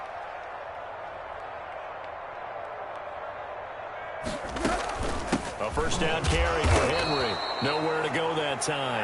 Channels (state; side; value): identical; both; correlation 1.00